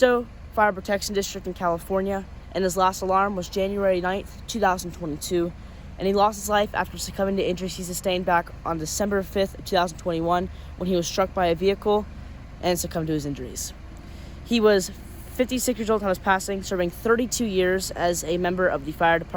Fire Protection District in California, and his last alarm was January 9th, 2022, and he lost his life after succumbing to injuries he sustained back on December 5th, 2021, when he was struck by a vehicle and succumbed to his injuries. He was 56 years old on his passing, serving 32 years as a member of the fire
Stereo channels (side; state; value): both; identical; correlation 1.00